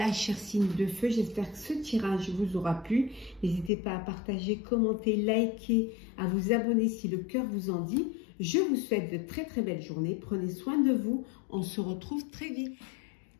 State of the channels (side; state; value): right; drops out; at 3.7 s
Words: chers signes de feu, j'espère que ce tirage vous aura plu. N'hésitez pas à partager, commenter, liker, à vous abonner si le cœur vous en dit. Je vous souhaite de très très belles journées. Prenez soin de vous. On se retrouve très vite.